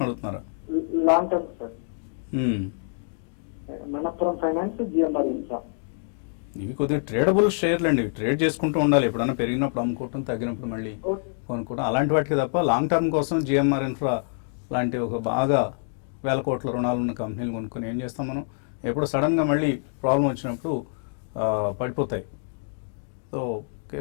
అడుగుతున్నారా? Long term sir. Manappuram finance, GMR infra ఇవి కొద్దిగా ట్రేడబుల్ షేర్లు అండి. ట్రేడ్ చేసుకుంటూ ఉండాలి. ఎప్పుడైనా పెరిగినప్పుడు అమ్ముకోవటం, తగ్గినప్పుడు మళ్ళీ కొనుక్కోవడం, అలాంటి వాటికి తప్ప లాంగ్ టర్మ్ కోసం జిఎంఆర్ ఇన్ఫ్రా లాంటి ఒక బాగా 1000 కోట్ల రుణాలు ఉన్న కంపెనీలు కొనుక్కొని ఏం చేస్తాం మనం? ఎప్పుడు సడన్గా మళ్ళీ ప్రాబ్లం వచ్చినప్పుడు పడిపోతాయి. సో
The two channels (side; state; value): right; silent; digital silence